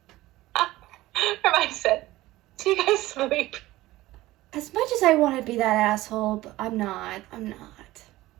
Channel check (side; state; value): left; quieter; 17.4 dB